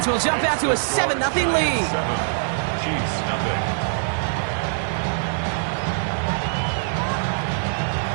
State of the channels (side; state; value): left; silent; digital silence